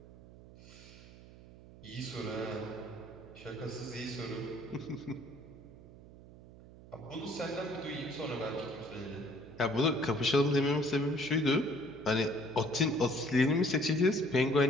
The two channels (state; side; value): noise; right; hum, 19 dB below the sound